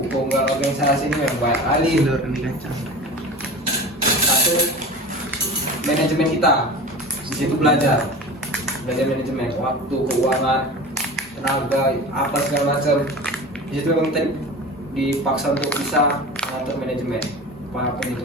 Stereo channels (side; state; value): both; normal; correlation 0.34